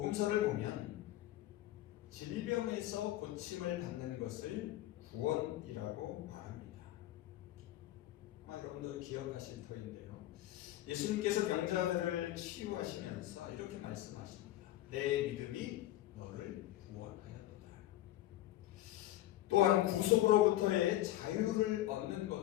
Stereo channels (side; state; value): right; quieter; 14.6 dB